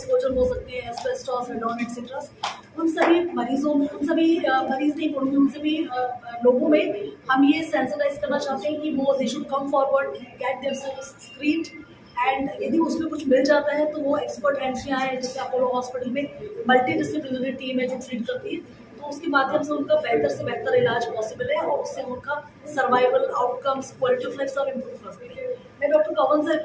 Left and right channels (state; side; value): identical; both; correlation 1.00